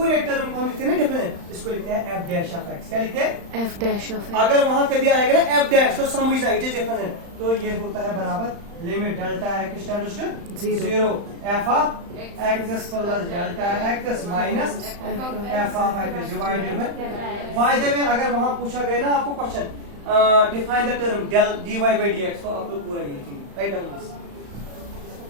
टर्म को हम लिखते हैं ना डिफरेंट, इसको लिखते हैं f dash of x। क्या लिखते हैं f dash of x। अगर वहां कभी आएगा ना f dash तो समझना इट इज डिफरेंट, तो ये होता है बराबर limit delta x tends to 0 f of x plus delta x minus f of x divided by the way. अगर वहां पूछा गया ना आपको question define the term del dy by dx को आप लोग पूरा ये लिखेंगे. Write down this.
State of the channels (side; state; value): left; late; 35 ms